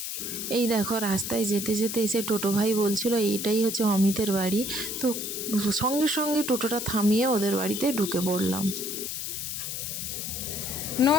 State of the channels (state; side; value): noise; left; hiss, 4 dB below the sound